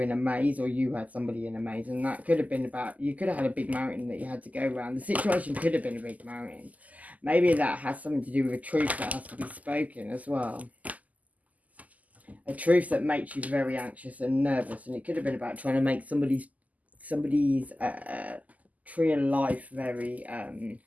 in a maze, or you had somebody in a maze. And that could have been about, you could have had a big mountain that you had to go around. The situation could have been a big mountain. Maybe that has something to do with a truth that has to be spoken as well. A truth that makes you very anxious and nervous. And it could have been about trying to make somebody's tree of life very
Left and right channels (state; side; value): late; left; 0.077 ms